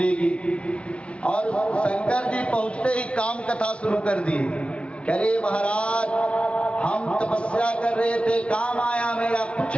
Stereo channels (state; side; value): late; right; 0.060 ms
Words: और शंकर जी पहुंचते ही काम कथा शुरू कर दी। कह रहे महाराज हम तपस्या कर रहे थे, काम आया मेरा, कुछ